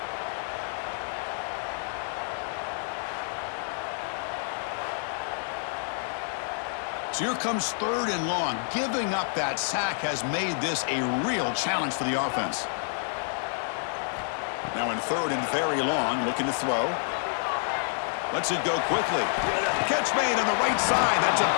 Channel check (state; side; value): silent; right; 59 dB below the other